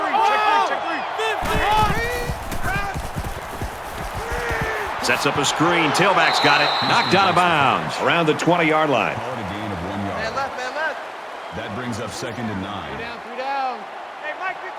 Sets up a screen. Tailback's got it. Knocked out of bounds around the 20-yard line. Call it a gain of 1 yard. Man left. That brings up 2nd and 9. 3 down. Hey, Mike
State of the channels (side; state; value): both; identical; correlation 1.00